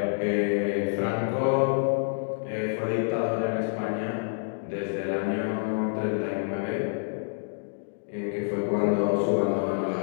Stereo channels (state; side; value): silent; right; digital silence